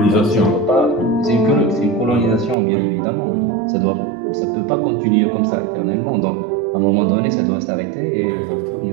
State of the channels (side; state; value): left; drops out; at 2.6 s